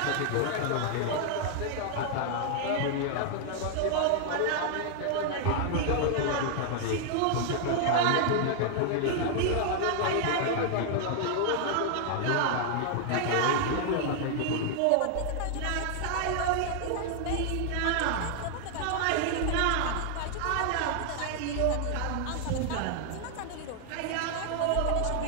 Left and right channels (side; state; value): both; different; correlation 0.00